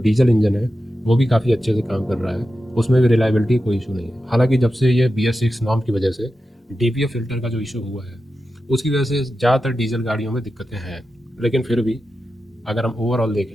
इंजन है वो भी काफ़ी अच्छे से काम कर रहा है, उसमें भी रिलायबिलिटी कोई इशू नहीं है। हालांकि जब से ये BS6 नॉर्म की वजह से DPF फिल्टर का जो इशू हुआ है उसकी वजह से ज़्यादातर डीजल गाड़ियों में दिक्कतें हैं, लेकिन फिर भी अगर हम ओवरऑल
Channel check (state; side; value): normal; both; correlation 0.91